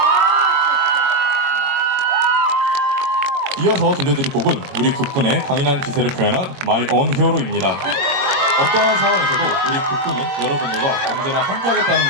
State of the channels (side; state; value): left; late; 22 ms